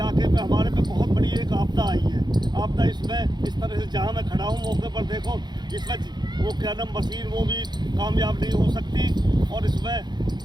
पे हमारे पे बहुत बड़ी एक आपदा आई है। आपदा इसमें इस तरह से, जहाँ मैं खड़ा हूँ मौके पर देखो, इसमें वो क्या नाम मशीन वो भी कामयाब नहीं हो सकती। और इसमें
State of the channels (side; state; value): left; late; 0.21 ms